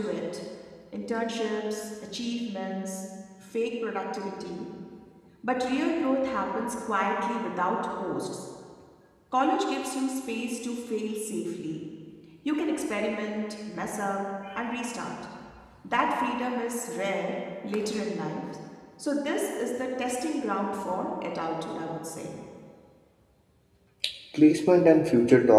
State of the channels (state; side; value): identical; both; correlation 1.00